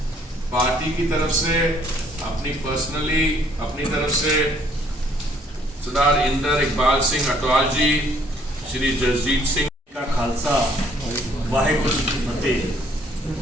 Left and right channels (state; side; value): normal; both; correlation 0.63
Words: पार्टी की तरफ से अपनी तरफ से सरदार इंदर इकबाल सिंह अटवाल जी, श्री जसजीत सिंह का खालसा वाहेगुरु जी की फतेह।